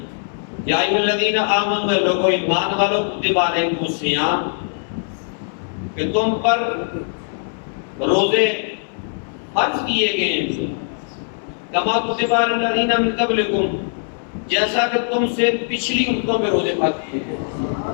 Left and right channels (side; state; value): right; silent; 65 dB below the other